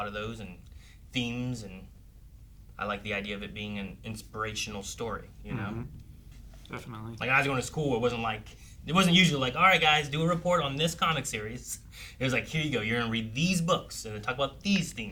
of those, and themes, and I like the idea of it being an inspirational story, you know? Definitely. Like when I was going to school, it wasn't usually like, all right guys, do a report on this comic series. It was like, here you go, you're gonna read these books and then talk about these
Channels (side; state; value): both; identical; correlation 1.00